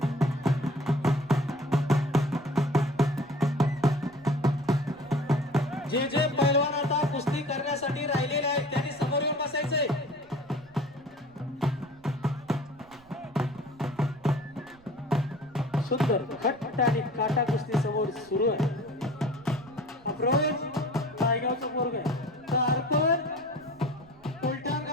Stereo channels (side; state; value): right; noise; rumble, 27 dB below the sound